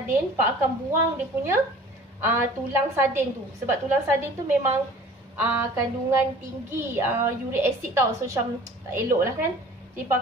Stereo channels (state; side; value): normal; both; correlation 0.47